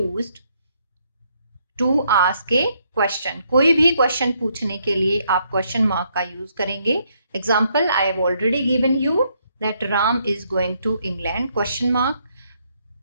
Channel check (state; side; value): inverted; both; correlation -0.73